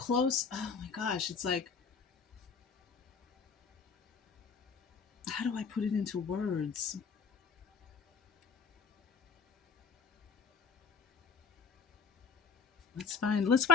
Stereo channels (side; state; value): right; quieter; 5.8 dB